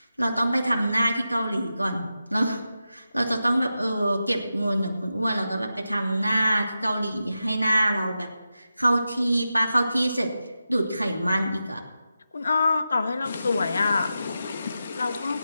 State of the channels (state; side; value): inverted; both; correlation -0.90